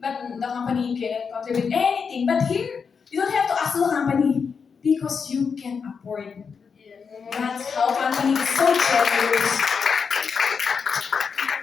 But the company cannot contribute anything. But here, you don't have to ask the company because you can afford. That's how company is so generous.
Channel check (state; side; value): quieter; right; 5.9 dB